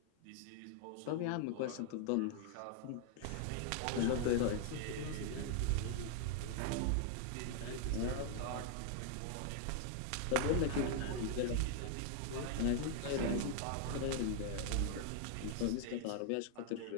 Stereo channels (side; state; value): both; different; correlation 0.00